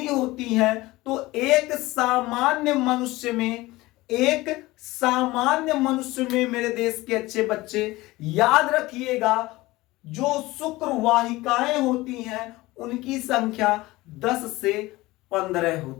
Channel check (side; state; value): right; quieter; 19.6 dB